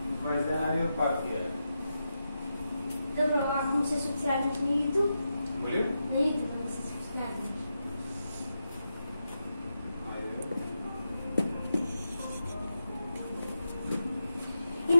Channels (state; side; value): inverted; both; correlation -0.87